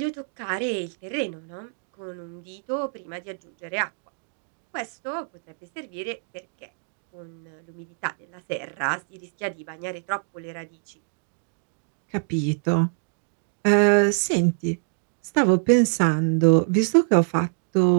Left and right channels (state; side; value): silent; left; digital silence